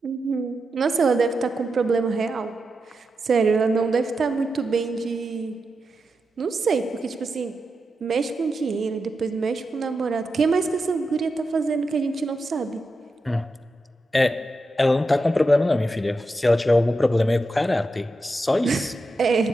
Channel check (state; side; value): normal; both; correlation 0.88